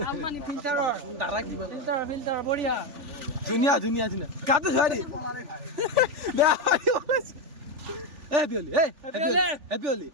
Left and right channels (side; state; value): left; late; 3.4 ms